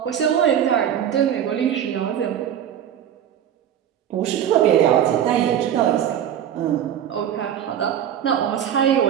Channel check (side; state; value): left; quieter; 9.8 dB